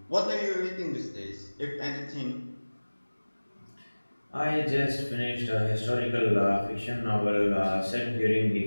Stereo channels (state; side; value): inverted; both; correlation -1.00